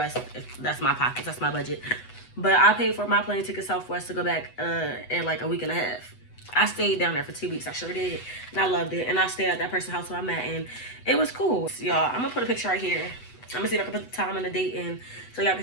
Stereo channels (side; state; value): right; late; 8.0 ms